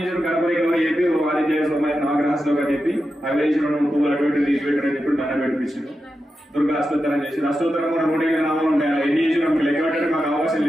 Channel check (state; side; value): normal; both; correlation 0.90